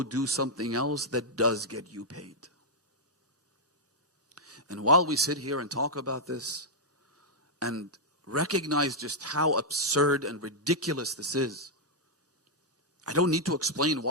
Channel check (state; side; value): normal; both; correlation -0.06